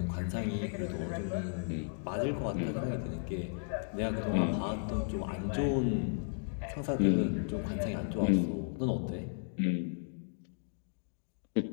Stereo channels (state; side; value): silent; right; digital silence